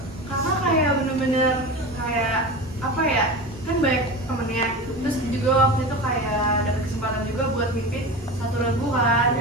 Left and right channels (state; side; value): normal; both; correlation 0.28